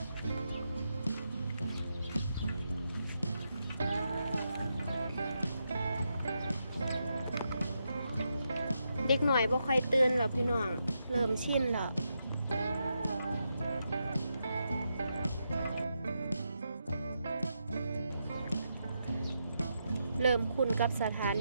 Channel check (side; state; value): both; inverted; correlation -0.84